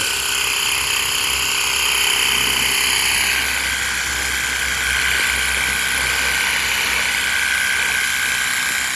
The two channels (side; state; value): both; identical; correlation 1.00